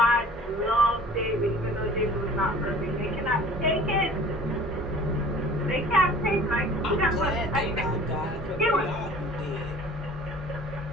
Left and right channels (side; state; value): both; normal; correlation 0.47